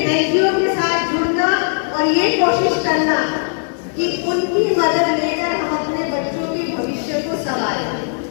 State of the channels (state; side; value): silent; right; 65 dB below the other